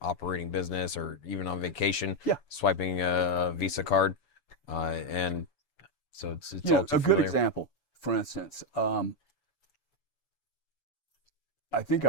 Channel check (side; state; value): right; late; 7.0 ms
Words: business or even on vacation. Yeah, swiping a Visa card, and so it's all too a good familiar. example. For instance, I think